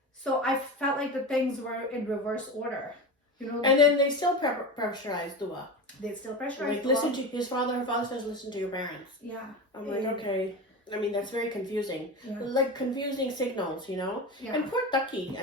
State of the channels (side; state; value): both; normal; correlation 0.25